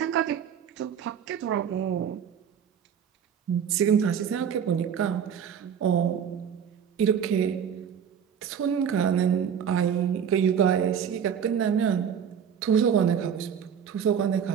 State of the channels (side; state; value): left; quieter; 7.9 dB